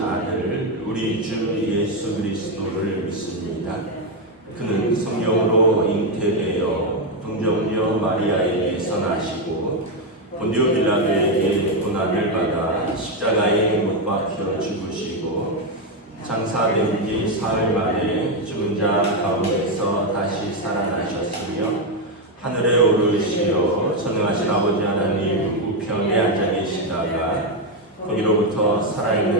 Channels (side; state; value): both; normal; correlation 0.05